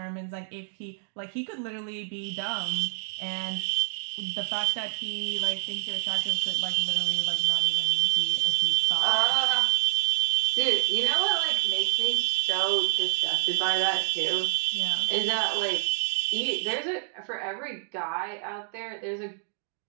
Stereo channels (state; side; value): silent; left; 59 dB below the other